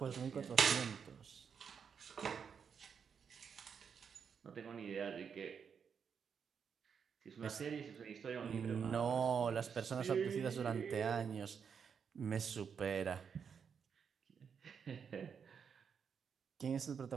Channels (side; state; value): left; quieter; 6.8 dB